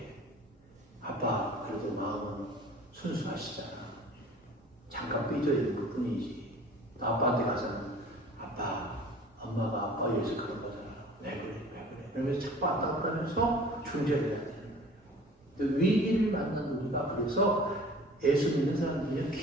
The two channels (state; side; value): normal; both; correlation 0.46